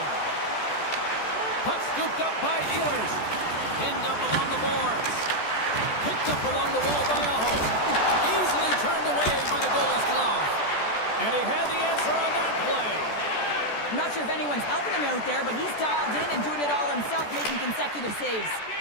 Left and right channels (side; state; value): right; late; 14 ms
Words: Puck scooped up by Ehlers. Pinned up along the boards. Picked up along the wall by Aho. Easily turned away by the goalie's glove. And he had the answer on that play. I'm not sure if anyone's helping him out there, but he's dialed in and doing it all himself, making consecutive saves.